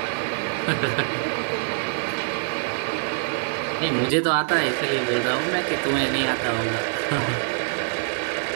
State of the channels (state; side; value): silent; left; 62 dB below the other